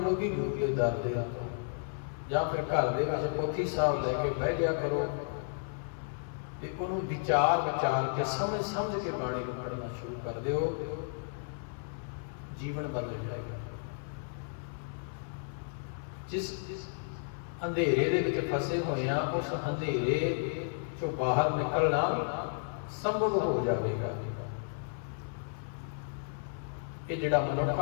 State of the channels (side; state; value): right; silent; 56 dB below the other